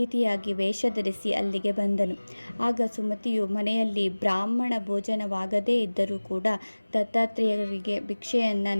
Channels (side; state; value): both; inverted; correlation -1.00